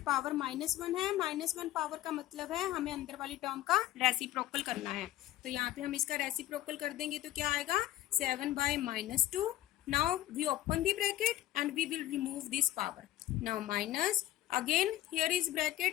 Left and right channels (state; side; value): quieter; right; 14.5 dB